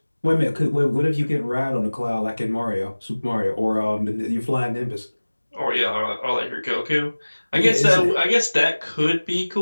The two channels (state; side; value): inverted; both; correlation -1.00